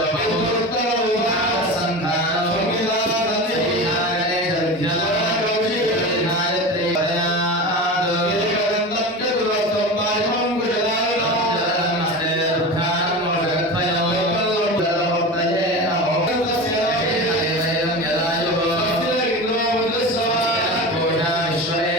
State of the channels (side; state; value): both; normal; correlation 0.28